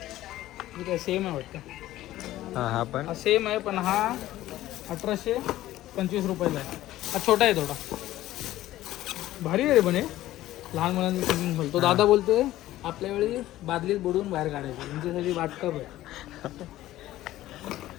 ठीक आहे, सेम आहे वाटतं. हा पण हा सेम आहे, पण हा 1825 रुपयाला आहे. हा छोटा आहे थोडा. भारी आहे रे पण हे. लहान मुलांचं स्विमिंग पूल. तो दादा बोलतोय आपल्या वेळी बादलीत बुडवून बाहेर काढायचं, तुमच्यासाठी वाटकप आहे.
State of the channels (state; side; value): quieter; right; 15.0 dB